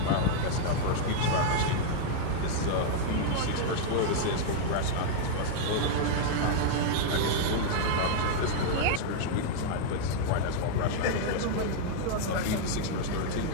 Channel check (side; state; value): both; different; correlation -0.01